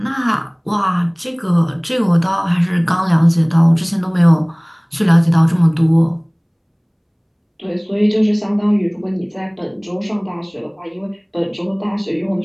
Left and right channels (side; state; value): both; identical; correlation 1.00